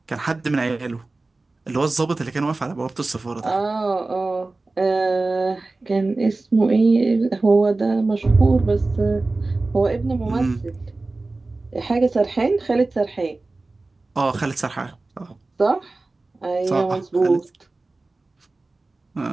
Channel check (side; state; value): left; quieter; 3.3 dB